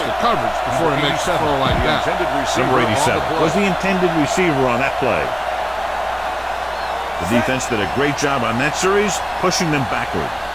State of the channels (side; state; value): both; identical; correlation 1.00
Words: coverage before he makes a throw like that. Number 87 was the intended receiver on that play. The defense did a great job on that series, pushing them backward.